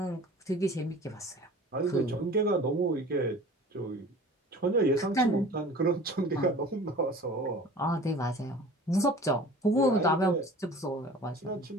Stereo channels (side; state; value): both; normal; correlation 0.43